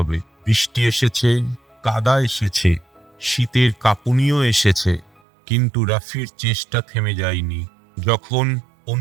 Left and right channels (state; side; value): drops out; left; at 5.2 s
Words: বৃষ্টি এসেছে, কাদা এসেছে, শীতের কাঁপুনিও এসেছে, কিন্তু রাফির চেষ্টা থেমে যায়নি। যখন